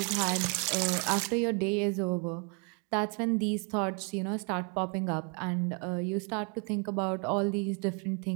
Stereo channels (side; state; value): left; quieter; 38.0 dB